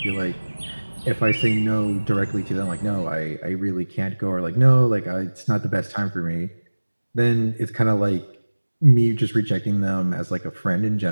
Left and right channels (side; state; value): both; inverted; correlation -1.00